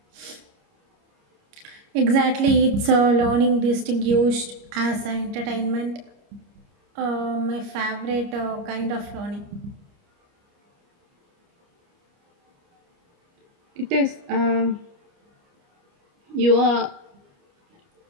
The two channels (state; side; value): late; left; 29 ms